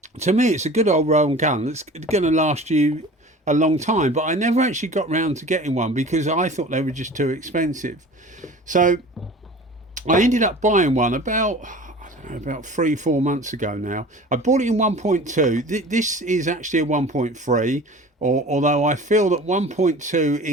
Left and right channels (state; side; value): normal; both; correlation 0.41